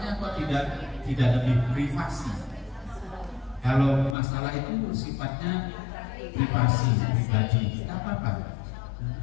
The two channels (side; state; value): right; drops out; at 4.2 s